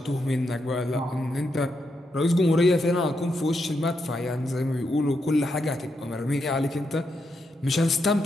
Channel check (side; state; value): both; normal; correlation 0.82